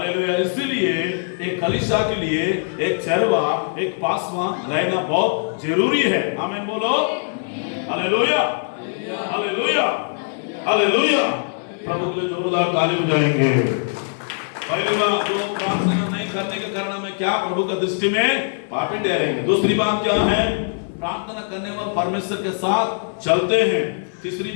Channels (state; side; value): silent; right; 59 dB below the other